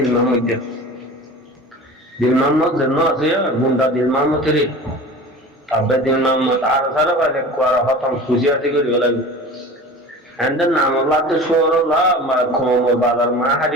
Muhammad de. Dil Muhammad janna ase ya gunda dil Muhammad tere. Abbe dil Muhammad arvara bhai kwara patam khushi ase kori hola. And then namalla te shoro la ma khomo badar ma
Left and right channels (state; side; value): normal; both; correlation 0.37